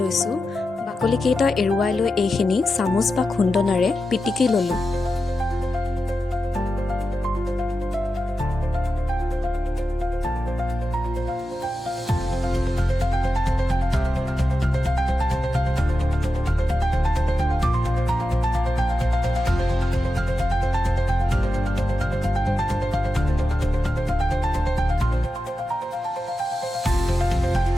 লৈছোঁ। বাকলিকেইটা এৰুৱাই লৈ এইখিনি চামুচ বা খুন্দনাৰে পিটিকি ল'লোঁ।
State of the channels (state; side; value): normal; both; correlation 0.91